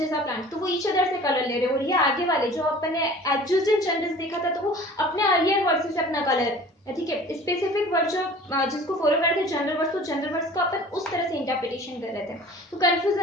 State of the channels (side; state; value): both; normal; correlation 0.45